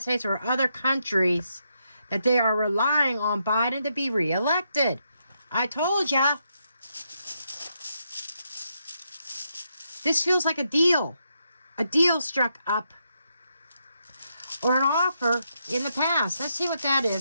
States or other countries that they are relying on Biden to be reelected. I told ya. This feels like a deal. A deal struck up. Or an offer in the past. Let's see what that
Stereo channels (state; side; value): inverted; both; correlation -0.80